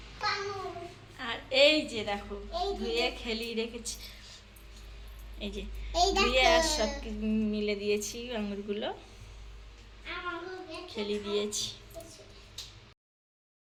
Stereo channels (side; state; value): both; identical; correlation 1.00